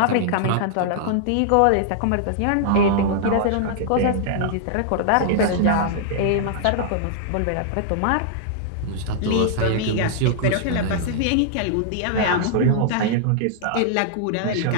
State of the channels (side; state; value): both; different; correlation -0.01